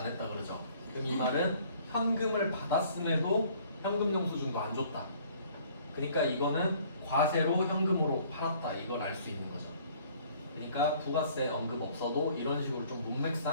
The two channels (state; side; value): inverted; both; correlation -0.57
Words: 했다 그러죠. 그럼 이 말은 현금을 받았음에도 현금 영수증도 안 줬다. 그러니까 이거는 과세로 현금으로 팔았다. 이걸 알 수 있는 거죠. 그러니까 부가세 언급 없어도 이런 식으로 좀